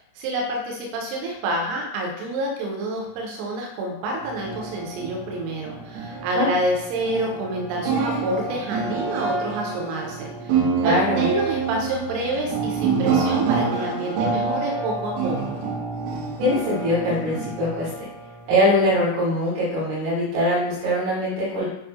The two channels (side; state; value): left; late; 27 ms